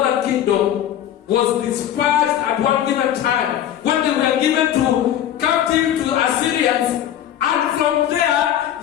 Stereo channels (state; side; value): quieter; right; 10.9 dB